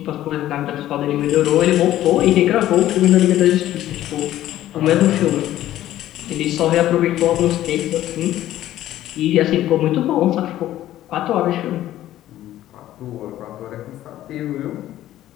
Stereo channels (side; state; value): right; quieter; 13.6 dB